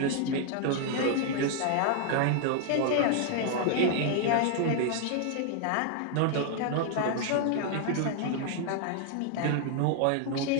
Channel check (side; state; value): both; different; correlation 0.00